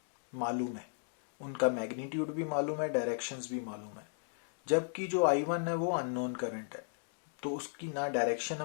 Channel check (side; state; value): right; silent; digital silence